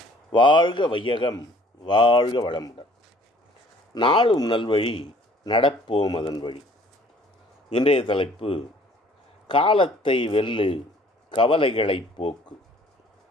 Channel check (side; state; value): both; normal; correlation 0.56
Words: வாழ்க வையகம், வாழ்க வளமுடன். நாளும் நல்வழி, நடப்போம் அதன் வழி. இன்றைய தலைப்பு: காலத்தை வெல்லு, கவலைகளை போக்கு.